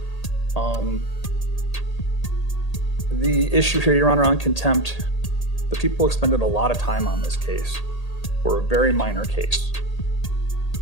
The issue here, Your Honor, on contempt, the people expended a lot of time on this case for a very minor case.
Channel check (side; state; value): right; late; 1.8 ms